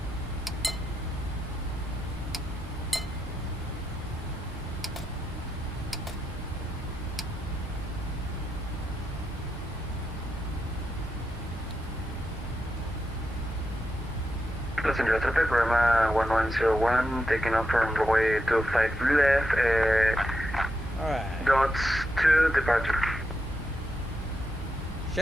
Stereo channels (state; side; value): normal; both; correlation 0.85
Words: Los Angeles traffic, Roma 1101, taking off from runway 25 left, Alright. dots to departure.